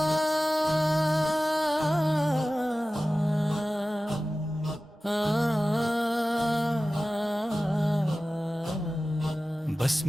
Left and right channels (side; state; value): both; normal; correlation 0.96